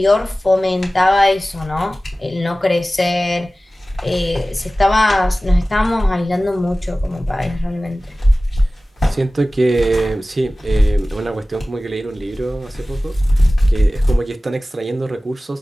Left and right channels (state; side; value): normal; both; correlation 0.97